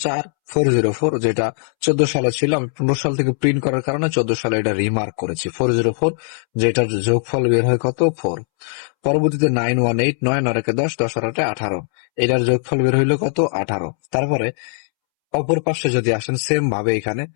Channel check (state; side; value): silent; right; 66 dB below the other